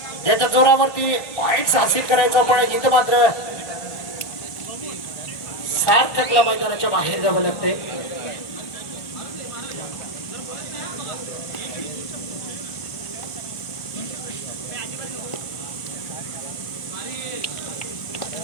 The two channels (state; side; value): late; right; 1.4 ms